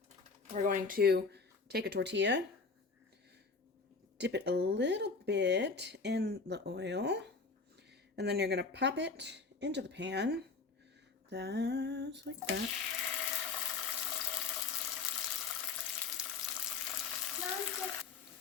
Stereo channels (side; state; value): right; quieter; 4.5 dB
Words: We're going to take a tortilla, dip it a little bit in the oil, and then you're going to pop it into the pan. That's like that.